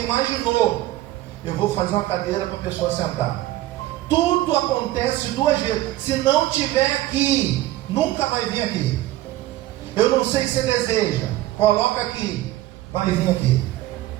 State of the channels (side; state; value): left; quieter; 15.7 dB